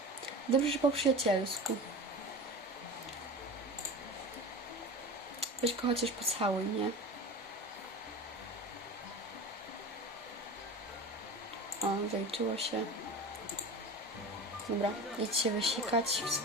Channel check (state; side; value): normal; both; correlation 0.32